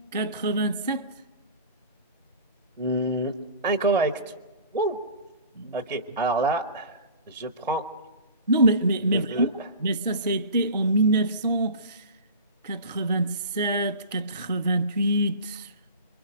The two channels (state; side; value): inverted; both; correlation -0.38